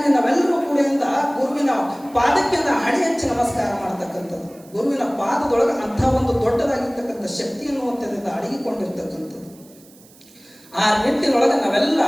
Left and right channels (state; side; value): noise; right; hiss, 26 dB below the sound